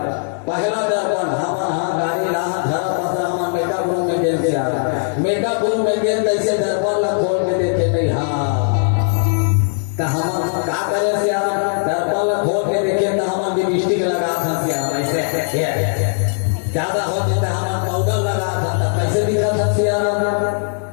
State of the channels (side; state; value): right; silent; 60 dB below the other